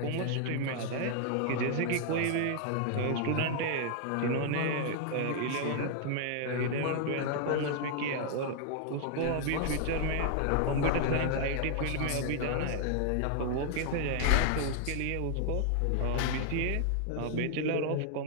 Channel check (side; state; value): both; different; correlation 0.00